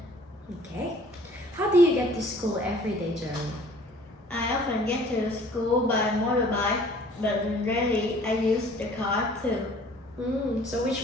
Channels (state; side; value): normal; both; correlation 0.53